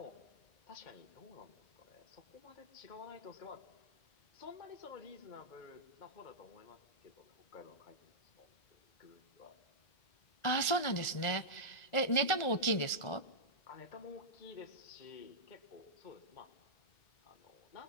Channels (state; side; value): late; right; 1.4 ms